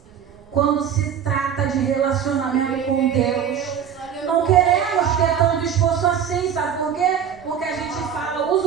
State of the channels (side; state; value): left; quieter; 8.3 dB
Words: quando se trata de relacionamento com Deus, não queremos ter tanto esforço assim, sabe por quê? Porque a gente